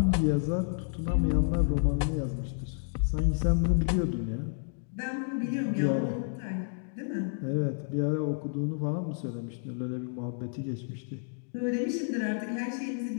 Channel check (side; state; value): right; silent; 58 dB below the other